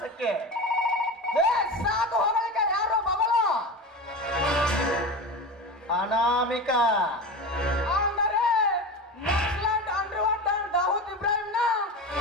ಸಾಕು ಹೊಗಳಿಕೆ, ಯಾರು ಮಗಳು ಅನಾಮಿಕ ಅಂದರೆ ನಕ್ಸಲೈಟ್ ಅಂಡರ್ವರ್ಲ್ಡ್ ದಾವೂದ್ ಇಬ್ರಾಹಿಂನ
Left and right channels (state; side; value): normal; both; correlation 0.26